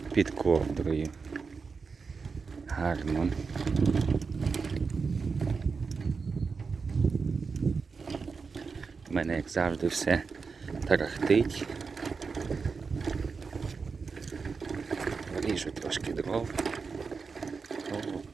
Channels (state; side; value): quieter; left; 5.0 dB